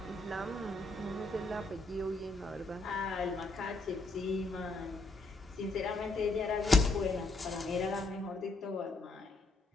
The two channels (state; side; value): quieter; right; 3.1 dB